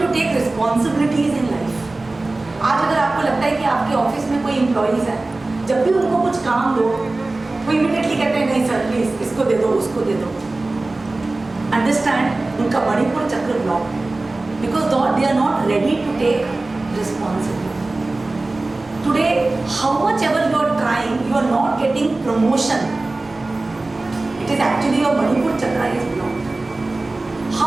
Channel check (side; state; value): left; quieter; 3.1 dB